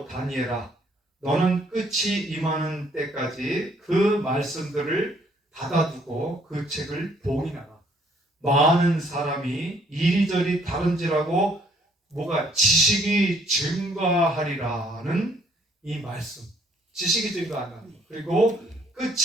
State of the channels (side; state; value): both; normal; correlation 0.64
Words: 다니엘아, 너는 끝이 임하는 때까지 그 말씀들을 닫아두고 그 책을 봉인하라. 많은 사람이 이리저리 다른지라고 뭐가 지식이 증가하리라는 이 말씀. 지식이 증가한다는 거. 그리고